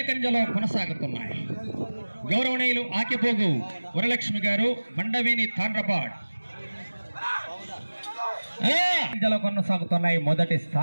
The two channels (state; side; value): inverted; both; correlation -1.00